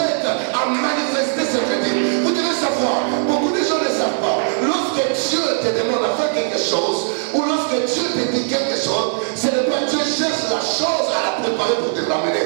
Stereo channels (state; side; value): silent; left; digital silence